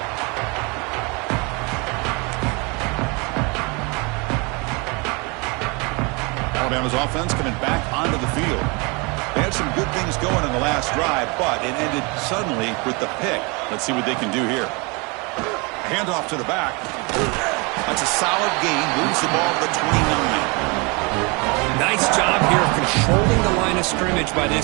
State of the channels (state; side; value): quieter; left; 29.2 dB